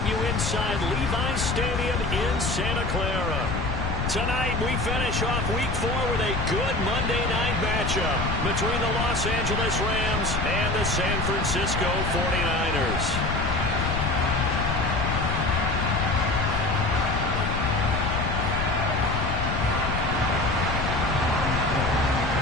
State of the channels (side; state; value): left; noise; rumble, 2 dB below the sound